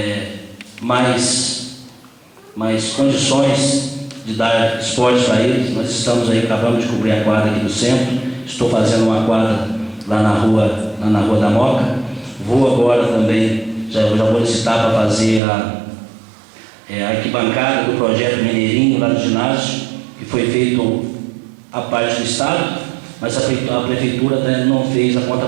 mais condições de dar esporte para eles. Nós estamos aí, acabamos de cobrir a quadra aqui do centro, estou fazendo uma quadra lá na rua da Moca, vou agora também, já vou licitar para fazer a arquibancada do projeto Mineirinho lá do ginásio, que foi feito a parte do Estado, mas a Prefeitura não fez a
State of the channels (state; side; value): drops out; left; at 15.4 s